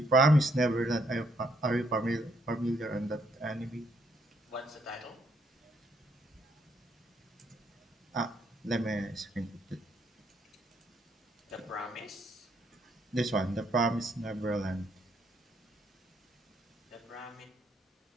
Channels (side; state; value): both; normal; correlation 0.71